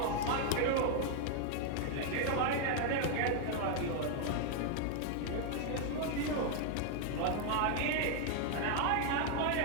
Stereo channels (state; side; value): different; both; correlation 0.00